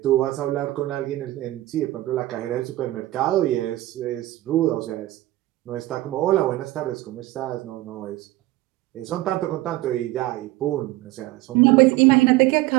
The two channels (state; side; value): quieter; left; 17.3 dB